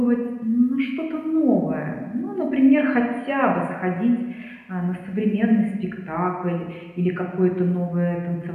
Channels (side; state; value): both; identical; correlation 1.00